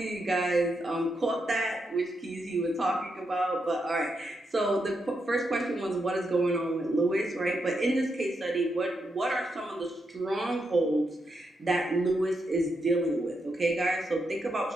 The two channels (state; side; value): normal; both; correlation 0.83